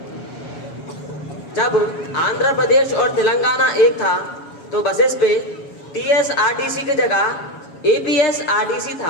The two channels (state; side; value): late; right; 7.1 ms